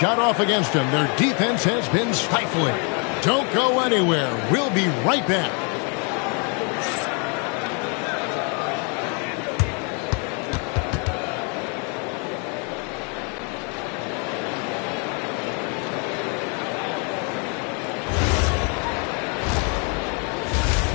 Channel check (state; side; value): quieter; right; 36.6 dB